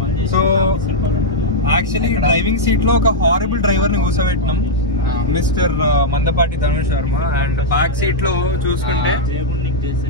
సో యాక్చువల్లీ డ్రైవింగ్ సీట్ లో ఒక హారబుల్ డ్రైవర్ ని కూర్చోబెట్టినాం, mister Mandapati Dhanush Sharma. And back seat లో చూసుకుంటే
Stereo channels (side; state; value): both; normal; correlation -0.05